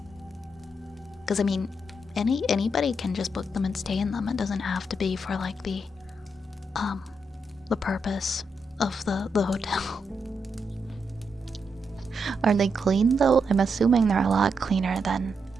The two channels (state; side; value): normal; both; correlation 0.82